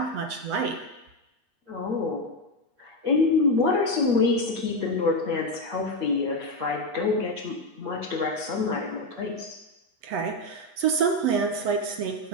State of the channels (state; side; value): late; left; 8.3 ms